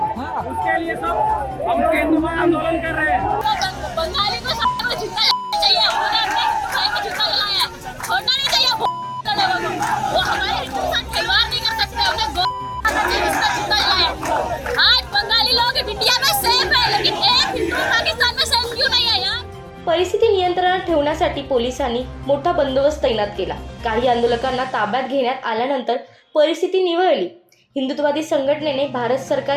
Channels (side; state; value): both; identical; correlation 1.00